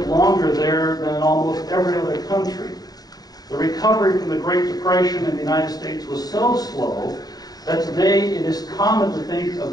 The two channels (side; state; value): right; late; 0.18 ms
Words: longer there than in almost every other country. The recovery from the Great Depression in the United States was so slow that today it is common to think of